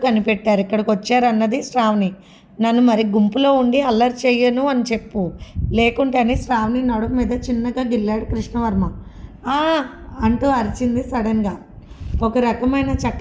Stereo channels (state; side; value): identical; both; correlation 1.00